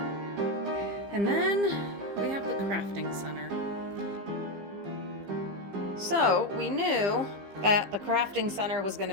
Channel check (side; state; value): left; late; 15 ms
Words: And then we have the crafting center. So we knew that the crafting center was going to